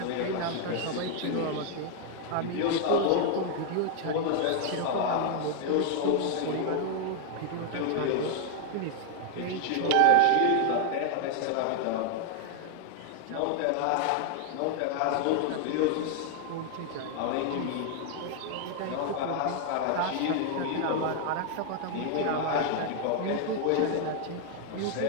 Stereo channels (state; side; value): different; both; correlation 0.00